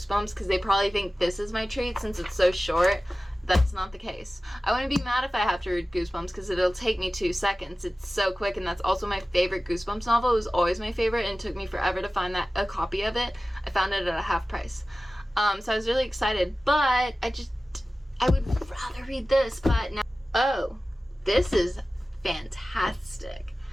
because they probably think this is my treat since it's so short. That's not the case. I wouldn't be mad if I have to read Goosebumps because it'll take me 2 seconds. It's so quick, and that's also my favorite Goosebumps novel. It was always my favorite, and it took me forever to find a copy of it. I found it at a half price. So I was really excited, but I would rather read this, but now, oh, this is fantastic.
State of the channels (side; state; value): both; normal; correlation 0.96